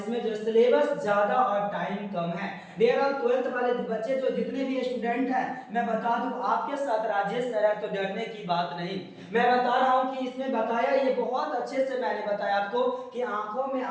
जो सिलेबस ज्यादा और टाइम कम है। डियर ऑल 12th वाले बच्चे जो जितने भी स्टूडेंट हैं मैं बता दूं आपके साथ राजेश सर है तो डरने की बात नहीं। मैं बता रहा हूं कि इसमें बताया ये बहुत अच्छे से मैंने बताया आपको कि आंखों में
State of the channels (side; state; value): both; identical; correlation 1.00